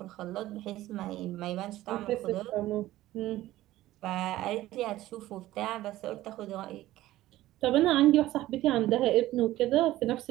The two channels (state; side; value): quieter; left; 15.6 dB